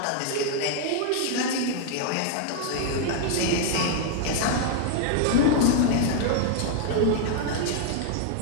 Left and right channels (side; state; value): both; different; correlation 0.00